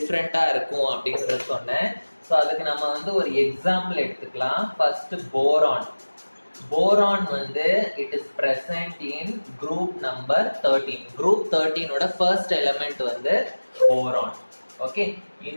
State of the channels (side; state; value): both; inverted; correlation -1.00